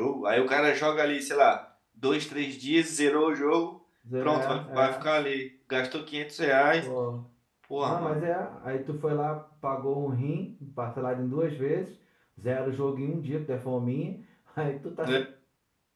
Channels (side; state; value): both; identical; correlation 1.00